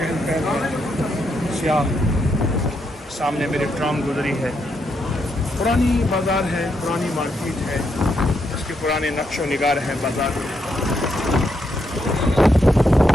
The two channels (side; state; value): both; normal; correlation 0.79